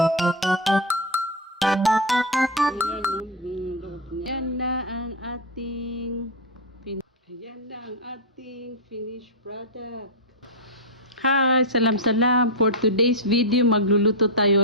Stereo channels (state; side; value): normal; both; correlation 0.04